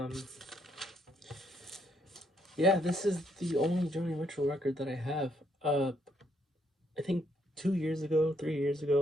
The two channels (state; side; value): normal; both; correlation 0.72